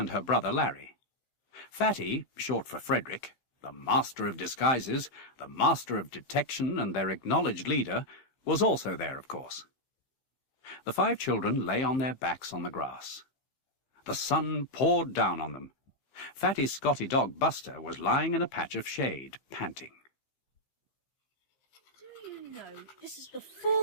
her brother Larry. Fatty, short for Frederick, the master of disguises, the master of detection and their acknowledged leader, was also there, of course. The 5 children lay on their backs on the grass. The sun poured down on them. Fatty's Scotty dog Buster was lying in a patch of shade, panting. No, this is the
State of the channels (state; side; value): late; right; 15 ms